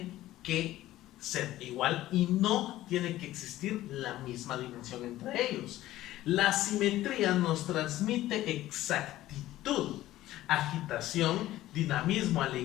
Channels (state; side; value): quieter; right; 15.1 dB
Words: que ser igual y no tiene que existir la misma dimensión entre ellos. La simetría nos transmite exactitud, agitación, dinamismo,